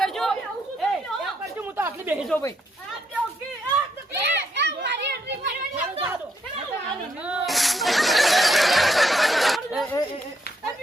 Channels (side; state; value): both; normal; correlation 0.75